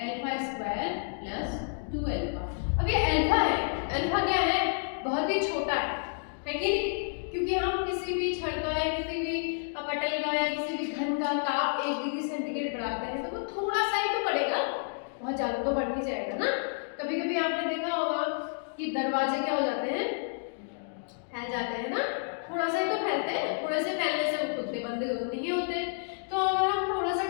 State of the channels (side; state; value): right; silent; digital silence